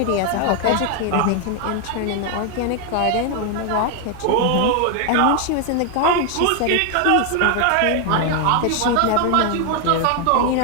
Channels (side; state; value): both; different; correlation 0.00